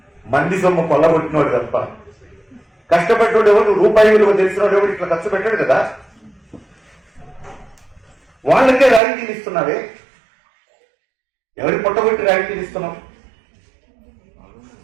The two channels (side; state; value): left; drops out; at 9.0 s